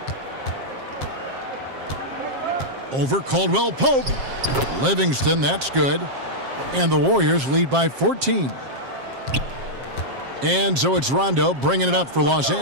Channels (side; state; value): left; late; 7.5 ms